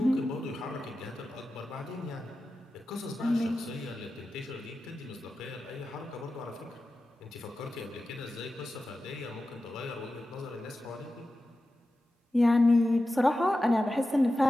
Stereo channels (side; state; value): both; normal; correlation 0.93